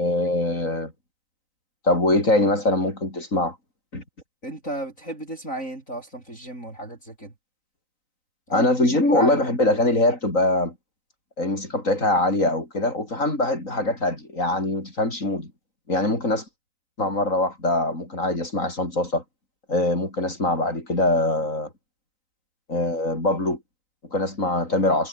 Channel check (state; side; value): late; right; 3.9 ms